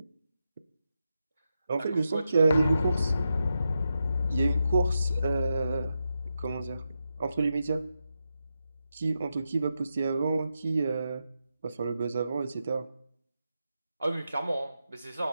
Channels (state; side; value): inverted; both; correlation -0.87